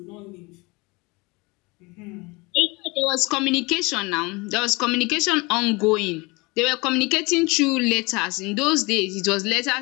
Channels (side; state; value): right; quieter; 25.7 dB